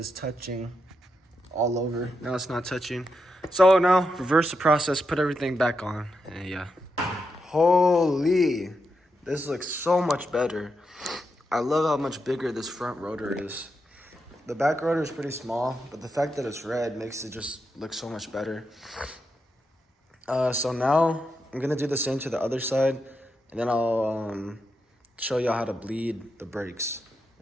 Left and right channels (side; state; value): both; normal; correlation 0.85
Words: touching all over. Now it's not touching. So now reverse the process, put everything back on, and yeah. Holy, this looks so much better. I love how much bigger this front rotor is. The back rotor is pretty small, but the fact that it's red makes it just look so much better. So now I'm gonna do the same to the other side, and then I'll show y'all how to bleed the brakes.